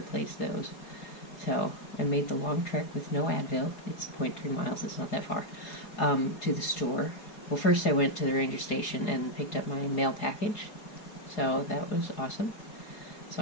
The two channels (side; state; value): right; late; 4.8 ms